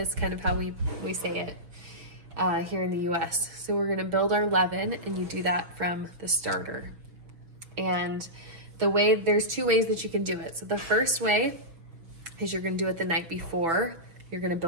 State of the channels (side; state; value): left; late; 6.1 ms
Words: kind of how we say it here in the US. So we're gonna build our leaven, and you do that from the starter. And there's two ways that you can do it. So the first way is you're gonna do it the night before you're gonna